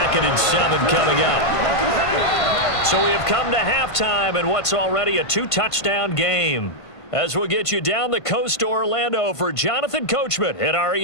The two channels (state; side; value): late; right; 1.5 ms